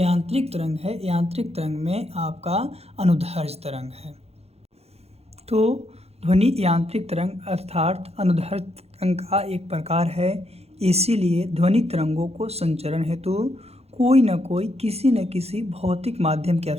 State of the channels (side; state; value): left; late; 0.30 ms